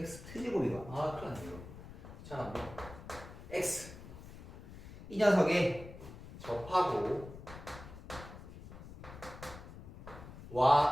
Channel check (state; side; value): noise; left; rumble, 14 dB below the sound